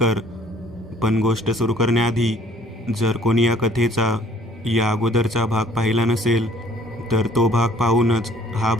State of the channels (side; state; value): both; normal; correlation 0.57